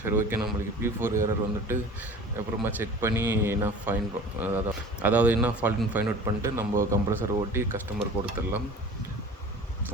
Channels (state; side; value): normal; both; correlation 0.42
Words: சரி, ஓகே, நம்மளுக்கு P4 எரர் வந்துட்டு அப்புறமா செக் பண்ணி என்ன ஃபைன், அதாவது என்ன ஃபால்ட்னு ஃபைண்ட் அவுட் பண்ணிட்டு நம்ம கம்ப்ரஸர் ஓட்டி கஸ்டமர் கொடுத்துடலாம்.